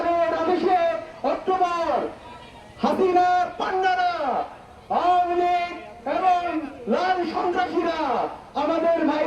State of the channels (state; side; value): identical; both; correlation 1.00